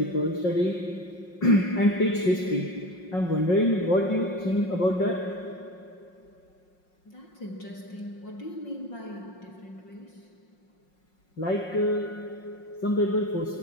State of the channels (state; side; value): late; right; 5.5 ms